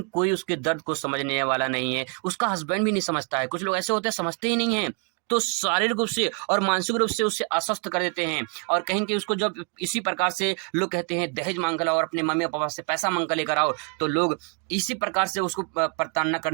कोई उसके दर्द को समझने वाला नहीं है। उसका हस्बैंड भी नहीं समझता है। कुछ लोग ऐसे होते हैं समझते ही नहीं है, तो शारीरिक रूप से और मानसिक रूप से उससे अस्वस्थ कर देते हैं। और कहीं कि उसको जब इसी प्रकार से लोग कहते हैं दहेज मांग कर लाओ और अपने मम्मी पापा से पैसा मांग कर लेकर आओ, तो लोग इसी प्रकार से उसको प्रताड़ना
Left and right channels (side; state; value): left; quieter; 38.7 dB